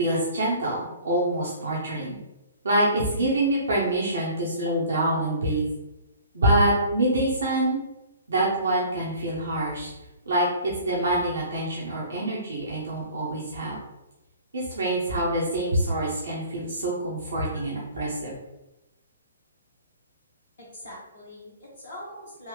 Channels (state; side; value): inverted; both; correlation -0.48